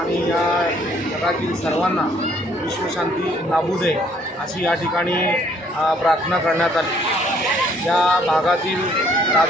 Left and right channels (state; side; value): normal; both; correlation 0.63